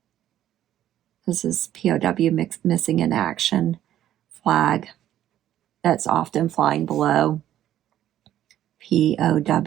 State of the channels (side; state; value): left; quieter; 12.1 dB